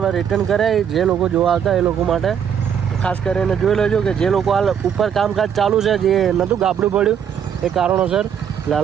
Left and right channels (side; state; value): left; quieter; 8.3 dB